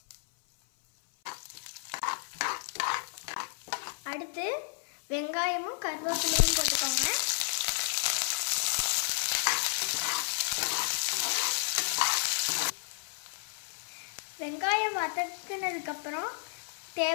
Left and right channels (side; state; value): right; silent; 56 dB below the other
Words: அடுத்து வெங்காயமும் கருவேப்பிலையும் போட்டுக்கோங்க. வெங்காயம் வதக்கினதுக்கு அப்புறம்